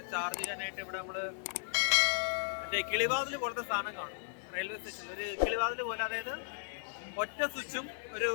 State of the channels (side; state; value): right; silent; digital silence